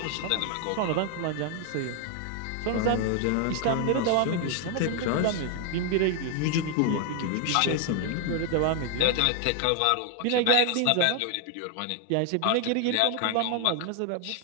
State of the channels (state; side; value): different; both; correlation 0.00